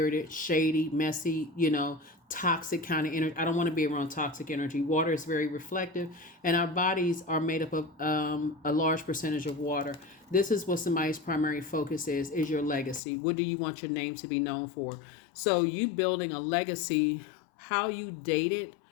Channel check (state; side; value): drops out; right; at 13.0 s